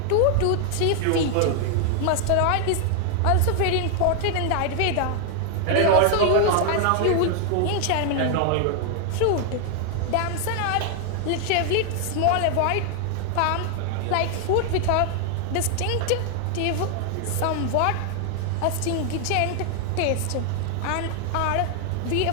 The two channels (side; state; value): both; different; correlation 0.00